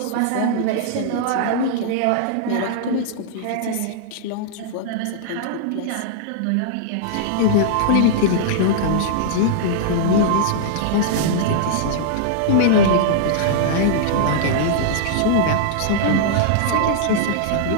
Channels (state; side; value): different; both; correlation -0.02